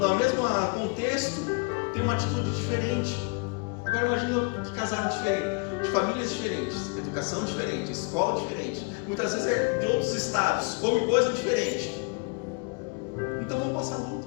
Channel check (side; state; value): right; quieter; 33.9 dB